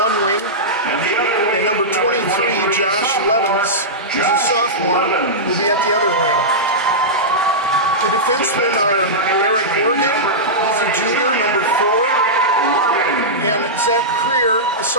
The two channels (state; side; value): normal; both; correlation -0.13